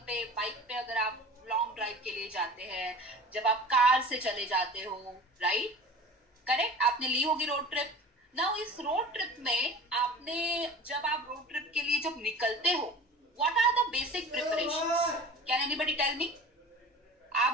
पे अगर आप लॉन्ग ड्राइव के लिए जाते हैं, जब आप कार से चले जाते हो, राइट, करेक्ट, आपने ली होगी रोड ट्रिप। नाउ इस रोड ट्रिप में जब आप रोड ट्रिप के लिए जब निकलते हो, what are the basic preparations? Can anybody tell me?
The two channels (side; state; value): both; normal; correlation 0.39